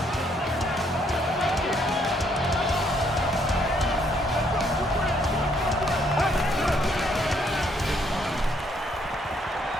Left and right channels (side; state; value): both; normal; correlation 0.69